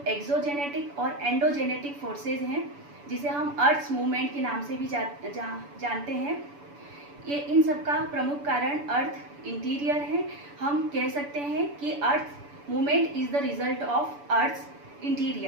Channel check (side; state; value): left; late; 7.0 ms